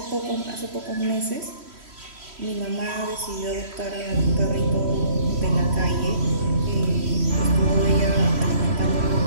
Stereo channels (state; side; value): late; left; 3.1 ms